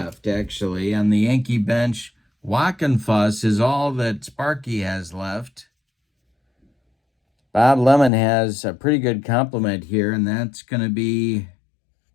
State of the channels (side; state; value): right; drops out; at 8.1 s